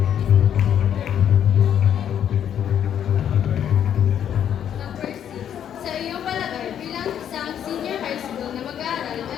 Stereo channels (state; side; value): quieter; right; 9.5 dB